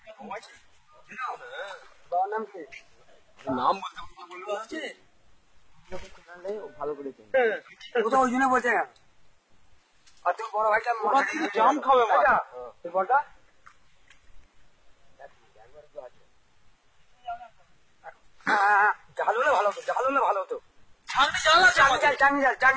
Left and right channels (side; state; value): both; identical; correlation 1.00